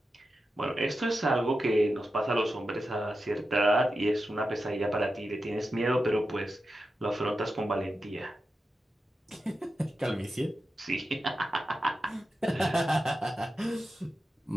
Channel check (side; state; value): both; normal; correlation 0.91